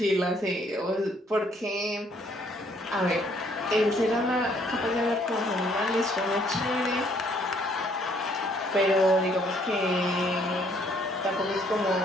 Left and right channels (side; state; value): both; normal; correlation 0.65